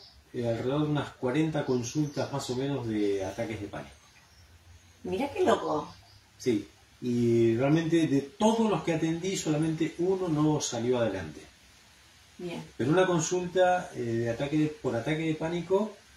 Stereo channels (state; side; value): identical; both; correlation 1.00